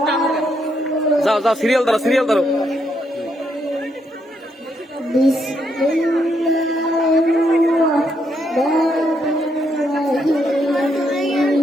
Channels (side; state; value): both; normal; correlation 0.76